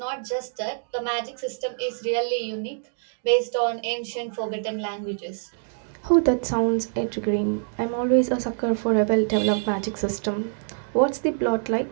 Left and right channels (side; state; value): left; silent; digital silence